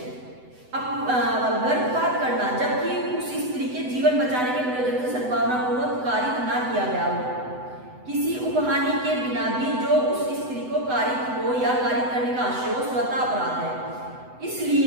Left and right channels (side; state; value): left; late; 7.9 ms